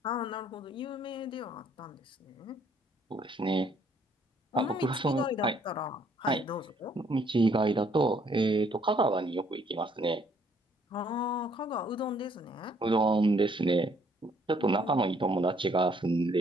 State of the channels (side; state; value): both; normal; correlation 0.65